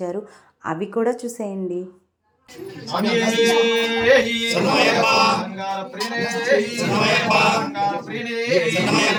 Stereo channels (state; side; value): identical; both; correlation 1.00